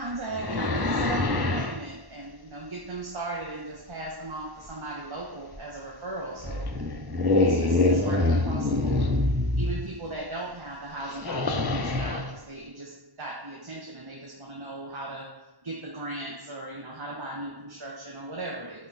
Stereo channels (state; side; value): late; left; 1.1 ms